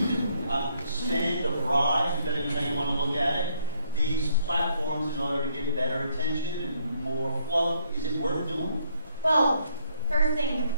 can spend a bribe, depending on how you want to look at it, these platforms in order to get better attention and more flow. Is it worth doing? Well, first thing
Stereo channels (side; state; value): both; inverted; correlation -0.70